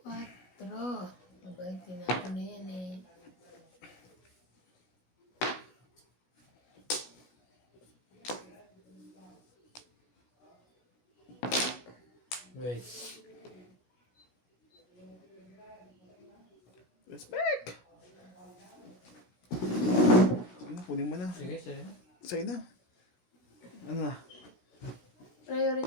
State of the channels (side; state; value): right; late; 16 ms